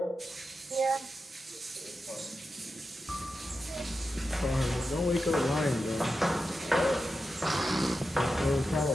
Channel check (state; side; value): normal; both; correlation 0.90